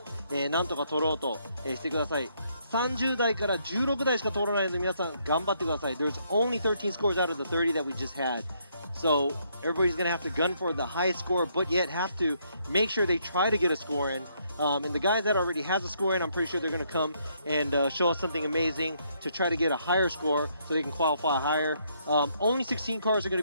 なんとか取ろうと、してください。30台から16台しか通らないので皆さん頑張ってください。There's only 13 scores out of the 30 that we just had. So everybody's going to have to gun for the highest score, but yet have to make sure they try to get a score in. And the guys that already has a score in, I'm pretty sure they're going to come and show us something amazing to try to get a higher score so they can qualify higher. Only 16 cars are going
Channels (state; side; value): inverted; both; correlation -0.72